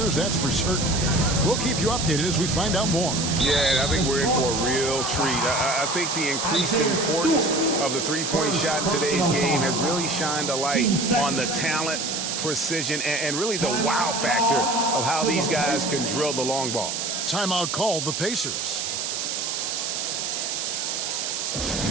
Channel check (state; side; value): noise; right; hiss, 2 dB below the sound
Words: that's for certain. We'll keep you updated as we find out more. Yeah, I think we're in for a real treat. I think the increased importance of the three-point shot in today's game has really shined a light on the talent, precision, and really the wow factor of how these guys can drill the long ball. Timeout called the Pacers. The